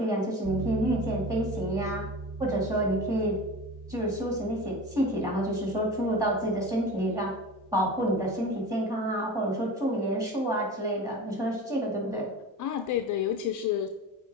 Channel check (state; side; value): normal; both; correlation 0.33